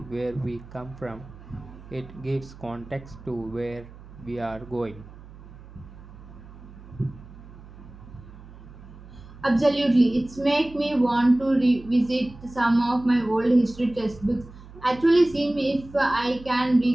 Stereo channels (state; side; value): noise; right; hum, 18 dB below the sound